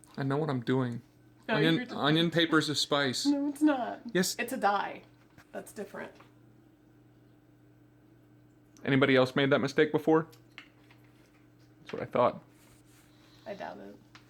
I know what I'm doing. No, Onion paper's a spice. No, it's not. Yes. It's a dye. That's different. Anybody else made that mistake before? That's what I thought. I doubt it.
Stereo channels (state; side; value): identical; both; correlation 1.00